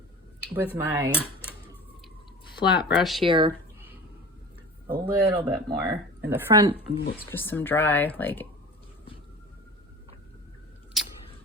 with my flat brush here, a little bit more in the front. It's just some dry, like,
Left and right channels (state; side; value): normal; both; correlation 0.36